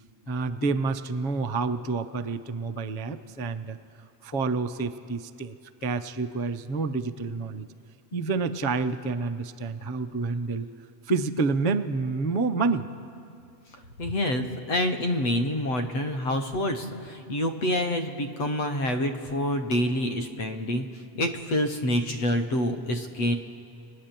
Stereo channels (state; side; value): late; right; 8.0 ms